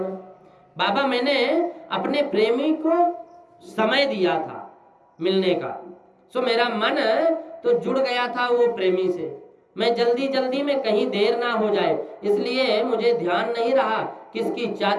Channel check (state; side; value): identical; both; correlation 1.00